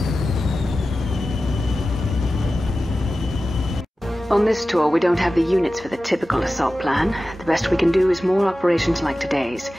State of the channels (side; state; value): both; normal; correlation 0.94